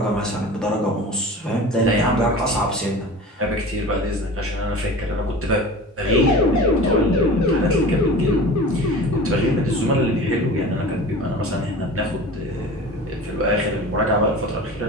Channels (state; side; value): normal; both; correlation 0.37